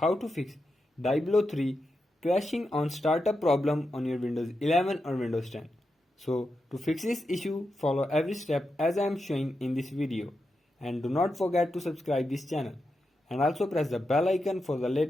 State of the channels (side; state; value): both; normal; correlation 0.88